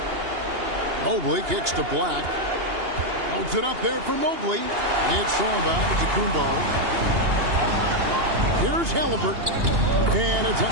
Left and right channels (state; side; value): late; left; 2.8 ms